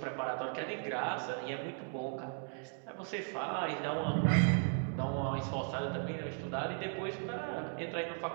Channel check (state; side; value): silent; left; 53 dB below the other